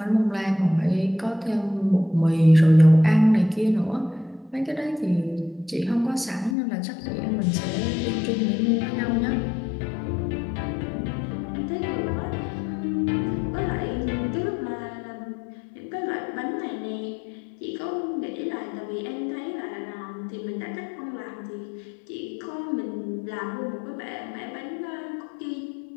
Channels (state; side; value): drops out; right; at 6.6 s